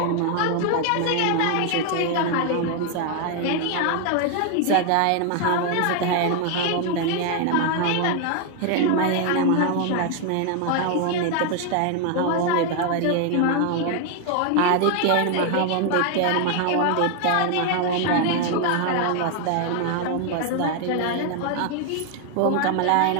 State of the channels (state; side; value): different; both; correlation 0.00